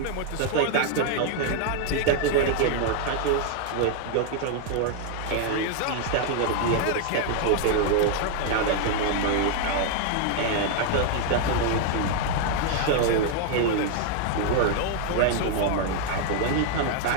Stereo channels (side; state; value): both; different; correlation 0.00